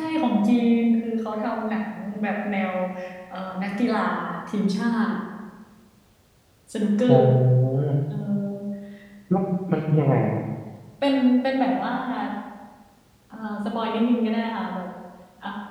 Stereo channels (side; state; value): both; identical; correlation 1.00